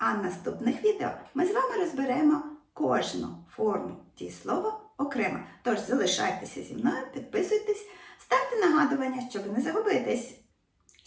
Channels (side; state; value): both; identical; correlation 1.00